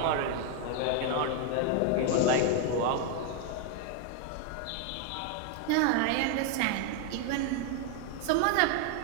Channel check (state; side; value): different; both; correlation 0.01